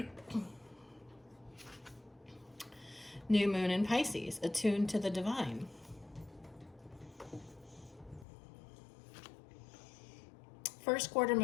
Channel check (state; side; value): drops out; right; at 8.2 s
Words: New moon in Pisces, attuned to the divine. First quarter